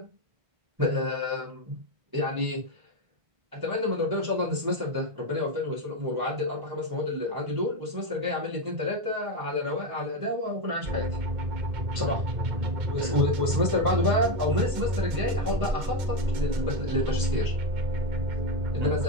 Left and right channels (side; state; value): left; late; 1.5 ms